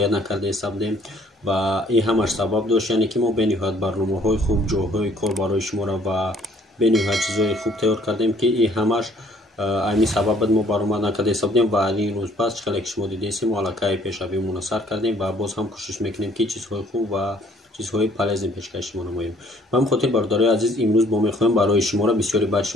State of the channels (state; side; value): normal; both; correlation 0.60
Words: накарда истодем ва ин ҳамаш сабаб дошт, яъне ки мо бениҳоят барномаҳои хуб, ҷойҳои кор барои шуморо ва бениҳоят чизҳои хуб тайёр кардем ки ин ҳамаш ҳамин сабаб буд мо баромад накарда истодем ва ин рӯз пас чӣ хеле ки шумо дидестем мо аллакай пешравимона сар кардем ва боз ҳам кӯшиш мекунем ки чизҳои хуб ва чизҳои полезни пешкаши шумо намоем. Ба ҳамин хотир бародарои азиз, имрӯз мо мехоҳем барои шуморо бисёри баъд